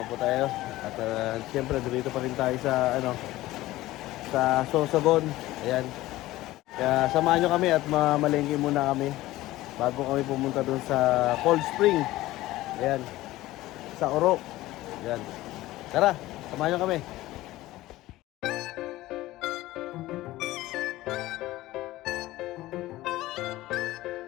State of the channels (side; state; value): right; quieter; 16.9 dB